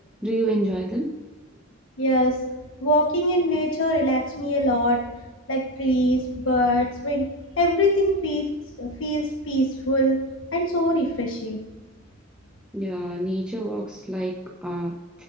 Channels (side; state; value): both; normal; correlation 0.18